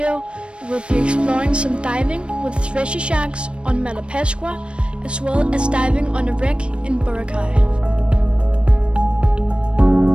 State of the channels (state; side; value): late; left; 0.057 ms